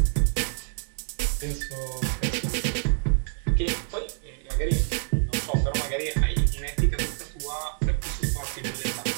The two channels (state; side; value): silent; left; digital silence